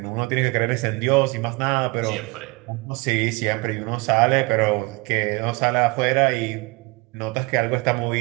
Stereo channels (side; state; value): left; quieter; 26.3 dB